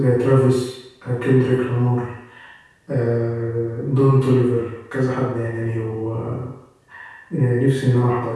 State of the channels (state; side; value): identical; both; correlation 1.00